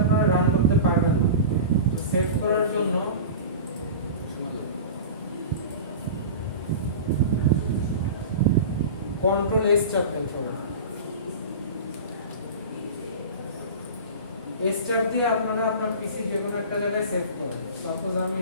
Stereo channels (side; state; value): both; inverted; correlation -0.32